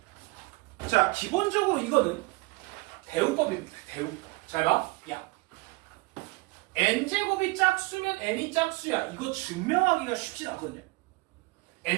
자, 기본적으로 이거는 대우법입니다. 대우법. 잘 봐. 야, n제곱이 짝수면 n이 짝수야. 이거 증명하기가 쉽진 않거든요.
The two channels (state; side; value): quieter; left; 24.2 dB